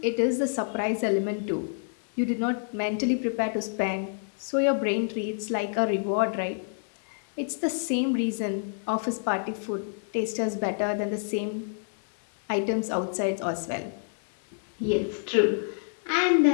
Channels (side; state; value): right; silent; 57 dB below the other